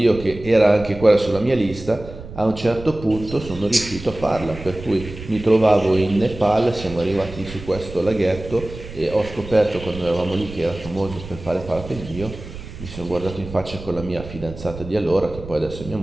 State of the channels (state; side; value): noise; right; rumble, 13 dB below the sound